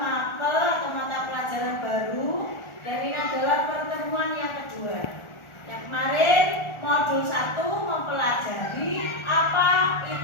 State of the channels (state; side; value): late; right; 1.4 ms